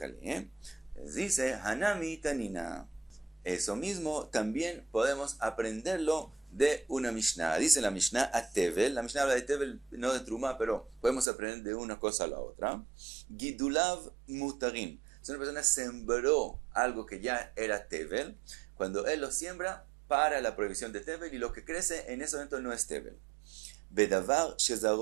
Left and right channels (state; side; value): drops out; left; at 11.2 s